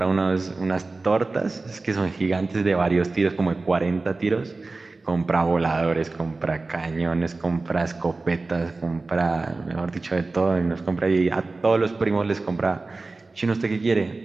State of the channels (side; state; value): left; quieter; 3.5 dB